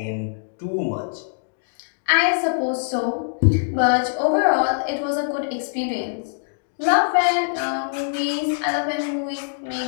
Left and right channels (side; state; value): right; silent; digital silence